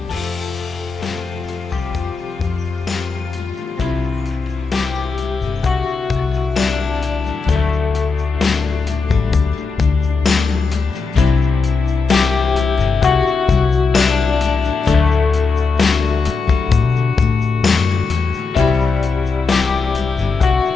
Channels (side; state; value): right; quieter; 4.3 dB